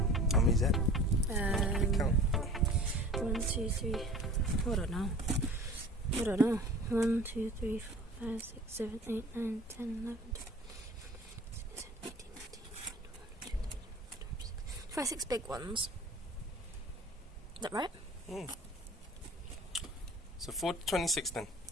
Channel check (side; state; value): both; normal; correlation 0.43